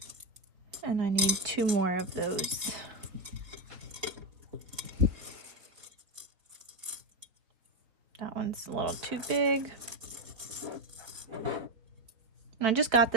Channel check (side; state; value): left; late; 4.0 ms